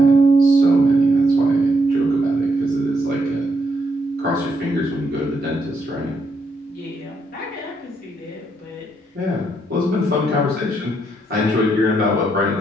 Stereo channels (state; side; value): normal; both; correlation 0.76